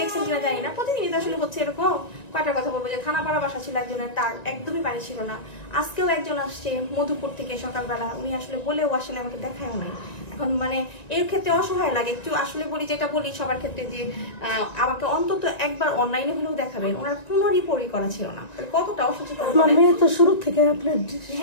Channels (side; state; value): right; late; 1.9 ms